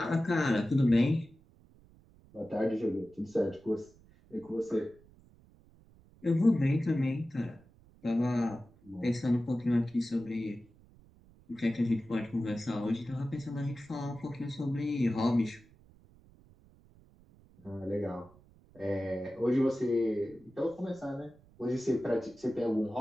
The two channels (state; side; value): noise; right; rumble, 27 dB below the sound